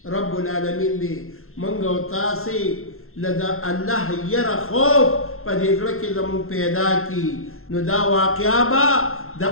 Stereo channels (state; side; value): late; right; 0.62 ms